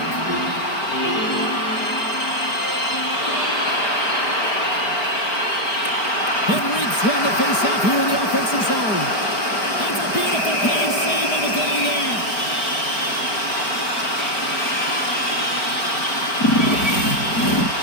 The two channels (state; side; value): late; right; 4.8 ms